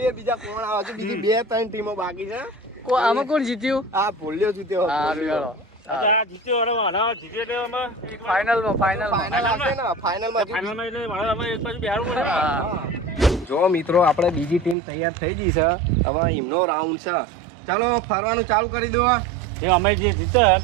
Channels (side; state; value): left; drops out; at 14.8 s